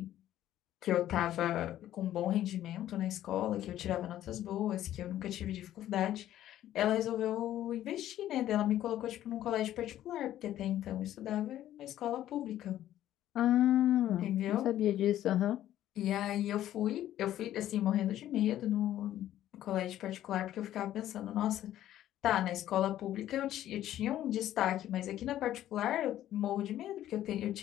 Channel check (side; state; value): right; quieter; 12.6 dB